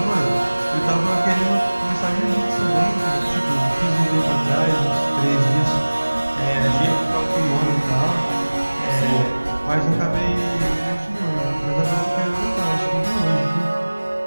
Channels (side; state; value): both; inverted; correlation -1.00